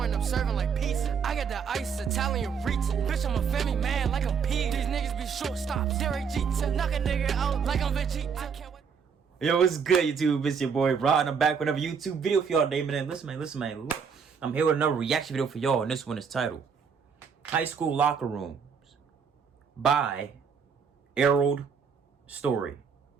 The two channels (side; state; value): left; quieter; 6.4 dB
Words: I'm serving like pizza. I got the ice, Italian reach. Bitch, I'm a family man like I'm P. These niggas be shortstops. Derek Jeter, knock a nigga out like I'm Vegeta. I can't wait. Yo, what's good, YouTube? It's your boy Rod, and I'm back with another YouTube video for y'all today, man. Listen, man. Look, I'm here with another reaction video for y'all, and this one is titled High School Locker Rooms by Errol Story.